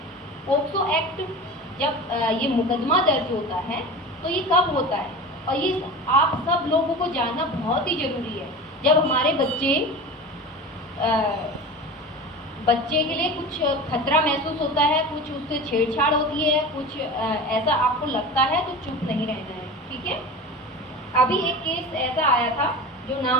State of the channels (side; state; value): both; normal; correlation 0.32